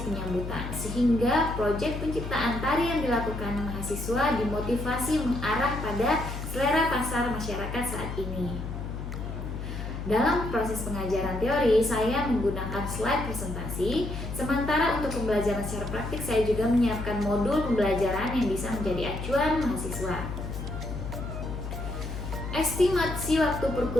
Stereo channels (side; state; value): left; noise; hum, 6 dB below the sound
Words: penyambutan, sehingga proyek penciptaan tari yang dilakukan mahasiswa dimotivasi mengarah pada selera pasar masyarakat saat ini. Dalam proses pengajaran teori, saya menggunakan slide presentasi, sementara untuk pembelajaran secara praktik saya juga menyiapkan modul pembelajaran yang bisa menjadi acuan mahasiswa. Estimasi waktu